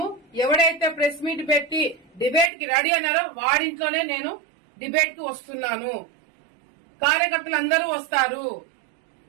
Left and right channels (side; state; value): left; drops out; at 2.5 s